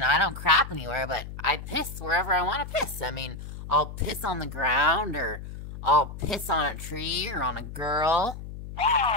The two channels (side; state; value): left; noise; hum, 11 dB below the sound